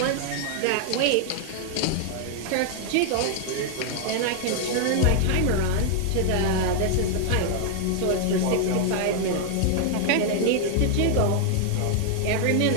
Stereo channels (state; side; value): different; both; correlation 0.00